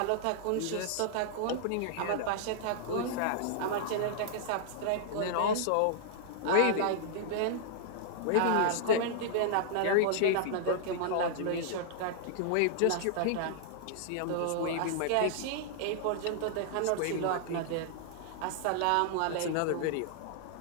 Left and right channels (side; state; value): both; different; correlation -0.01